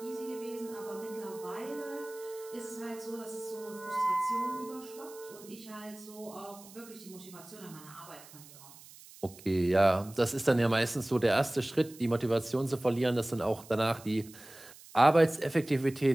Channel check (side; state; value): right; noise; hiss, 20 dB below the sound